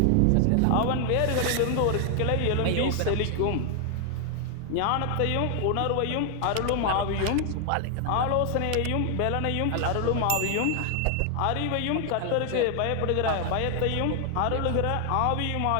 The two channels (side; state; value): both; different; correlation 0.00